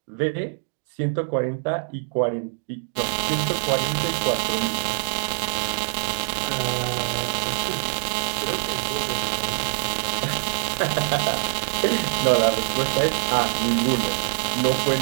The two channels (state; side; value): silent; left; digital silence